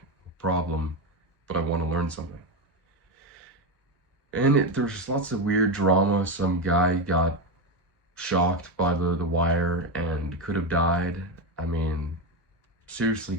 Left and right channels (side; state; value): both; normal; correlation 0.12